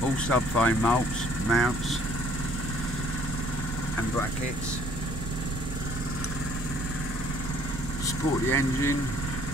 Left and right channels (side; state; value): right; noise; rumble, 5 dB below the sound